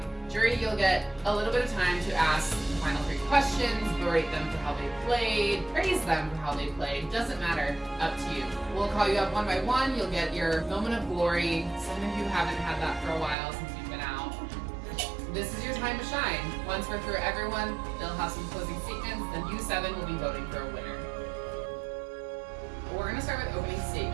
Jury, you'll get a little bit of time to ask the final 3 questions, berate them for how they played, praise them for how they played, doesn't matter, up to you. We'll call you up one by one, you'll get your moment of glory. Some of you haven't had that for a while since you've been out. This is your time to shine. Once we're through everyone, they'll have some closing statements, then you 7 will be voting for a winner. We're gonna start with opening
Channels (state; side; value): drops out; left; at 13.4 s